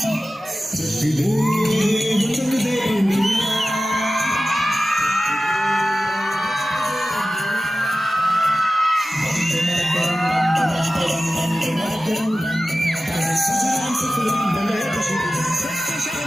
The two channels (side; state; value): both; normal; correlation 0.95